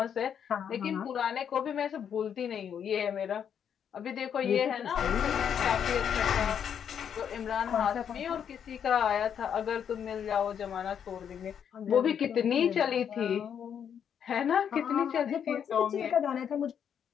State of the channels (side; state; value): right; quieter; 8.3 dB